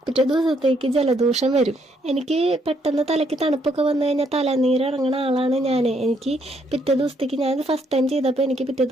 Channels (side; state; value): both; normal; correlation 0.72